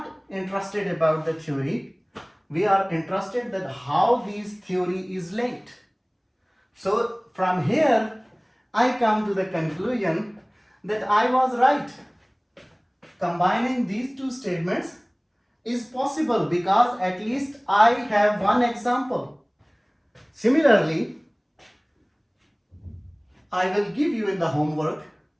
interested about the theory. We are interested that how this theory is linked. So from here, I come to the conclusion that I was right. Combining these two statements is possible because at least I have one example. Similarly, I will give you in the homework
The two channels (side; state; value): both; identical; correlation 1.00